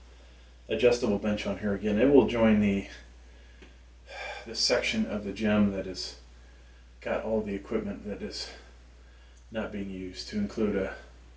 adjustable bench on here again. It will join the section of the gym that is got all the equipment that is not being used, to include a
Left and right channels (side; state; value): both; identical; correlation 1.00